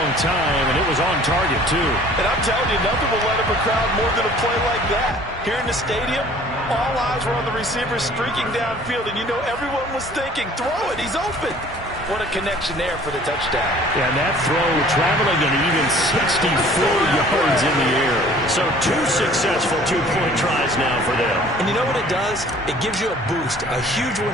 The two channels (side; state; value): both; normal; correlation 0.51